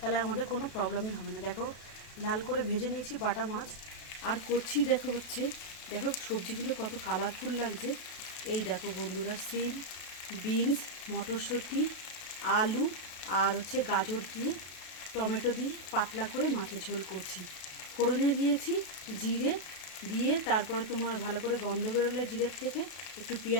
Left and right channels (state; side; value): late; right; 32 ms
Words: আমাদের কোনো প্রবলেমই হবে না। দেখো, লাল করে ভেজে নিয়েছি বাটা মাছ, আর করছি দেখো সবজিগুলো কত কালারফুল লাগছে। এই দেখো বন্ধুরা, সিম, বিনস, মটরশুঁটি, আলু আর গাজর দিয়ে, টমেটো দিয়ে পাতলা করে মাছের ঝোল করছি। ফোড়নে দিয়েছি জিরে দিয়ে, তারপরে ভালো করে গন্ধ বেরোলে জিরের থেকে একটু